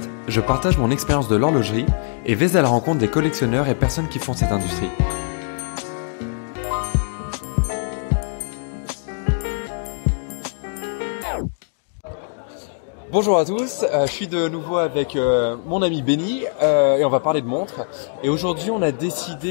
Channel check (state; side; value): silent; right; 64 dB below the other